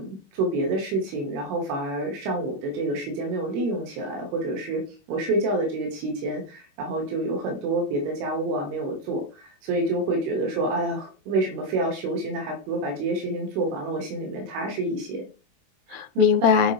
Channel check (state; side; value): late; left; 21 ms